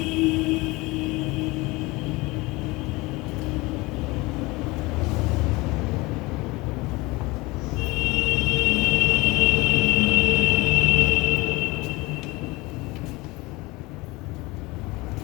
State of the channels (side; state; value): right; quieter; 22.7 dB